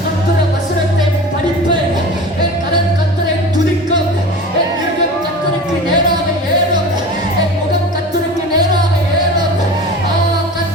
கர்த்தருடைய வசனத்தை படிப்பேன், என் கரம் கர்த்தரை துதிக்கும், என் இருதயம் கர்த்தருக்கு நேராக ஏறும், என் முகம் கர்த்தருக்கு நேராக ஏறும்.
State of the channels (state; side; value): normal; both; correlation 0.35